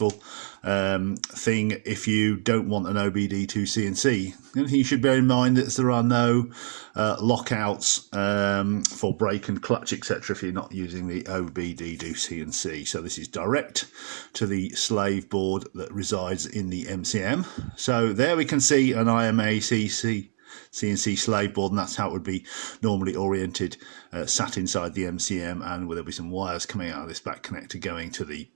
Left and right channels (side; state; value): left; silent; digital silence